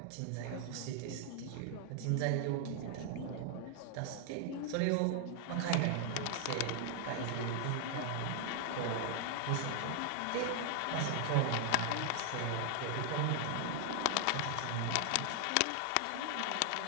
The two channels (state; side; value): different; both; correlation 0.00